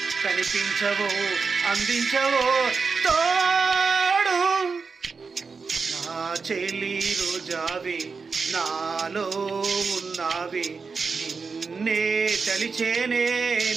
కనిపించవో అందించవో తోడు. నా చెలి రోజావే నాలో ఉన్నావే నిన్నే తలిచేనే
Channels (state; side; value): quieter; left; 4.9 dB